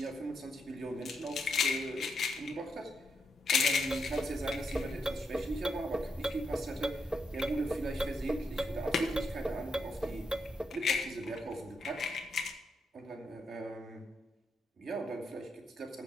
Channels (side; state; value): both; normal; correlation 0.81